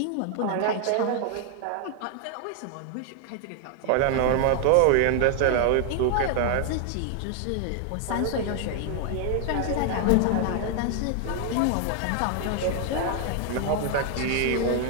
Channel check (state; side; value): different; both; correlation 0.00